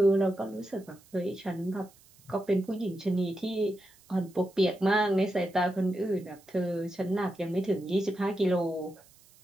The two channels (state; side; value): noise; right; hiss, 27 dB below the sound